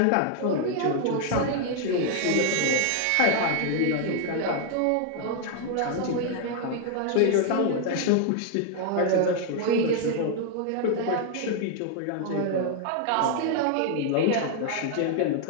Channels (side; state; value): both; different; correlation 0.00